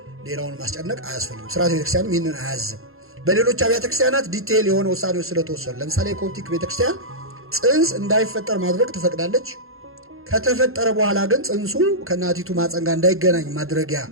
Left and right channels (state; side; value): late; left; 0.61 ms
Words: ሌላውን ማስጨነቅ አያስፈልግም። ስርዓተ ቤተክርስቲያንም ይህንን አያዝም። በሌሎች አብያተ ክርስቲያናት ዲቴይል የሆነ ውሳኔዎች ስለተወሰኑ፣ ለምሳሌ የኮፕቲክ ቤተክርስቲያን ፅንስ እንዳይፈጠር ማድረግ ትፈቅዳለች። ከተፈጠረ በኋላ ግን ፅንሱ ከእናቲቱ ማፀን ጋር እንዳይገናኝ ማድረጊያ